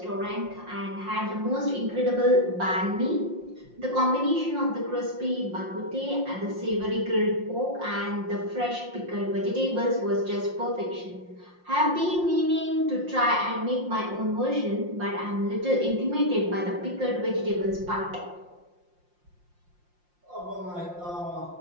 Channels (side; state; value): left; late; 5.7 ms